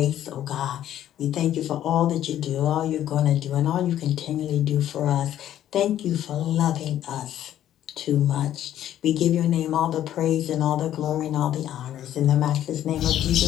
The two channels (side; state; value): right; quieter; 11.7 dB